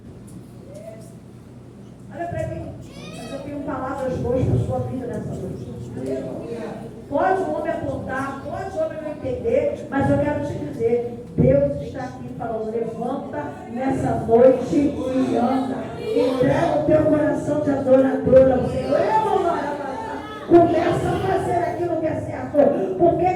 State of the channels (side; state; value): both; identical; correlation 1.00